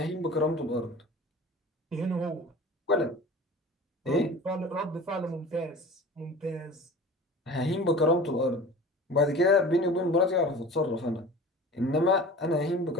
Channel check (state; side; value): normal; both; correlation 0.39